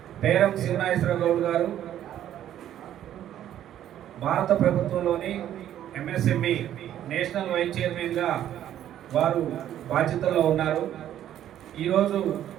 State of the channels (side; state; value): left; quieter; 11.4 dB